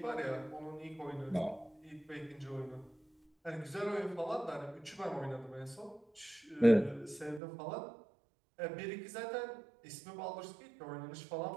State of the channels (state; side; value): drops out; left; at 7.4 s